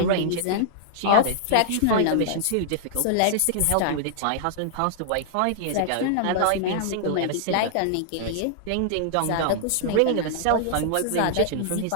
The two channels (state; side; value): different; both; correlation -0.01